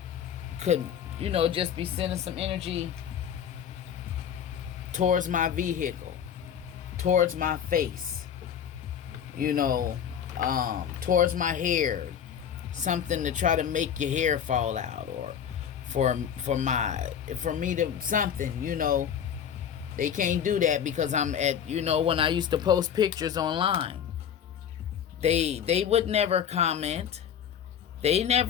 could, just be sending some energy towards my vehicle, towards my face, towards my hair, something to try to make your hair fall out, or for me to something, they can't do that because I'm at, when I used to post pictures online, they would never comment. They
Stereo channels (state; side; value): quieter; right; 8.5 dB